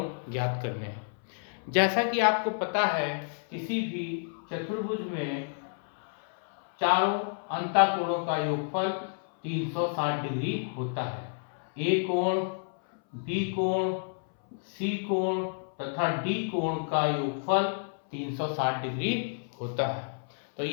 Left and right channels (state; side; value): silent; right; 58 dB below the other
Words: ज्ञात करने हैं। जैसा कि आपको पता है, किसी भी चतुर्भुज में चारों अंतःकोणों का योगफल 360 डिग्री होता है। ए कोण, बी कोण, सी कोण तथा डी कोण का योगफल 360 डिग्री होता है। तो